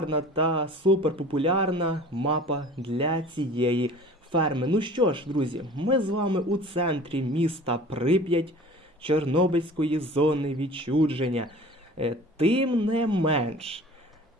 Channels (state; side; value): normal; both; correlation 0.44